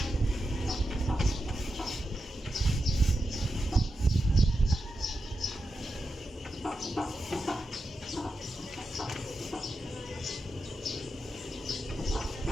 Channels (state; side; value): normal; both; correlation 0.89